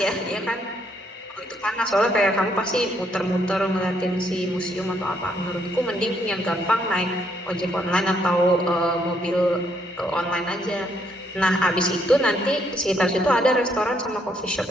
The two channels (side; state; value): both; normal; correlation 0.72